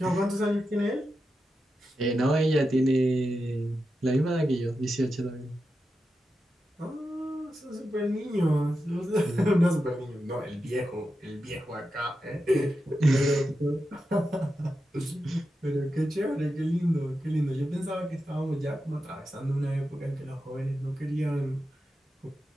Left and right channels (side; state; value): both; normal; correlation 0.89